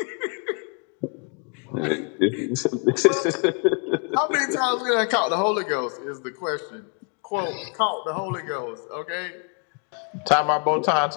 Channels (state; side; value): quieter; right; 38.8 dB